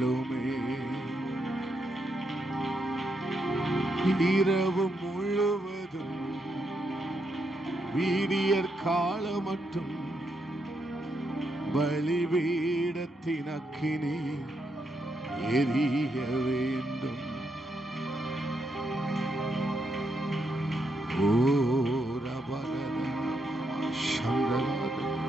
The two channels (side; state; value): both; normal; correlation 0.80